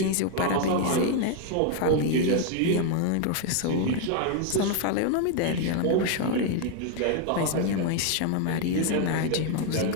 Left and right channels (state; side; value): different; both; correlation 0.00